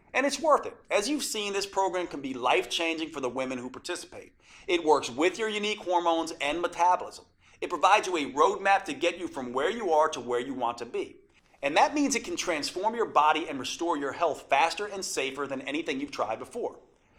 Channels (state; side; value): identical; both; correlation 1.00